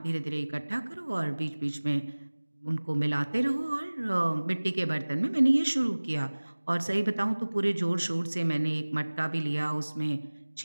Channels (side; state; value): both; inverted; correlation -1.00